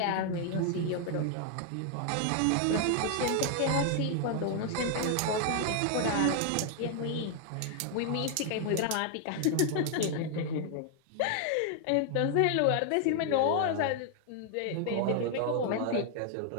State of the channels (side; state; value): both; different; correlation 0.00